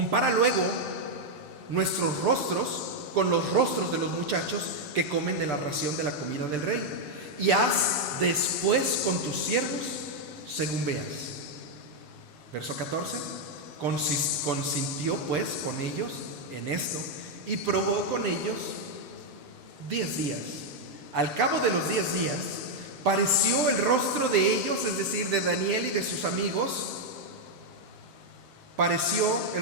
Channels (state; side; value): late; left; 6.9 ms